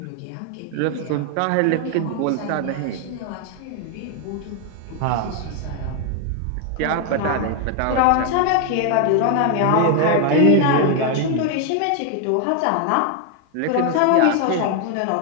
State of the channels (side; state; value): both; different; correlation 0.01